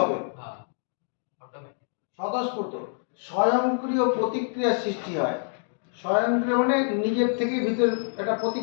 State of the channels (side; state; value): right; silent; digital silence